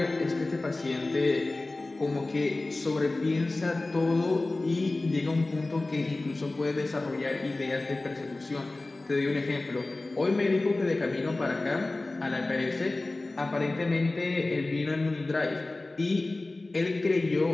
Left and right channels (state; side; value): quieter; right; 3.0 dB